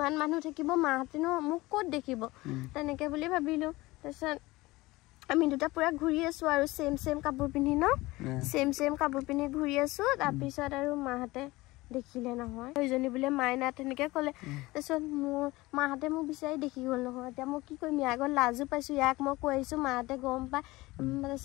মানুহ থাকিব মাহঁতেনো মোক ক'ত দেখিব তেনেকে বুলি ভাবিলো তাৰপিছত আমি দুটা পুৰা ঘূৰি আছো আৰু সেম কাপোৰ পিন্ধি ন সেম কাপোৰ পিন্ধি ঘূৰি আছো তাৰপিছত আৰু মাহঁতে দেখিলে নহয় সেইজনী বোলে মাইনা তেনেকে ক'লে তাৰপিছত মোৰ মাহঁতে মোক বিচাৰি দেখি গ'ল নহয় এতিয়া মই কি কৰিম ইয়াৰ আগত লাজো পাইছো ইয়াক মই কৈ আহিছো মাহঁতে গম পাই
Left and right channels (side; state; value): right; quieter; 20.3 dB